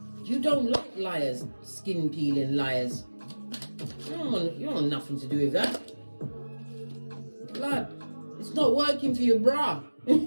You don't like liars, skin peeling liars. You don't want nothing to do with that. Blood. It's not working for you, brah.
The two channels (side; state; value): both; inverted; correlation -1.00